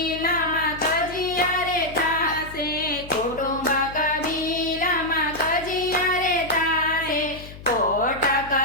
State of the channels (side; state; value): left; noise; hum, 16 dB below the sound